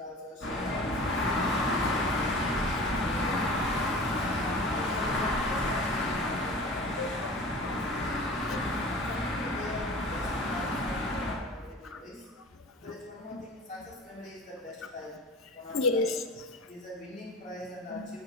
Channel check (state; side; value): normal; both; correlation 0.38